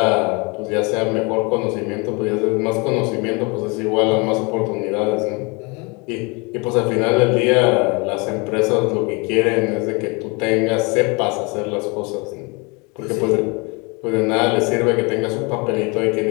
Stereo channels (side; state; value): right; quieter; 29.4 dB